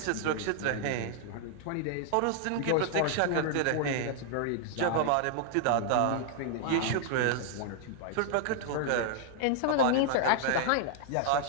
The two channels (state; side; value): different; both; correlation -0.01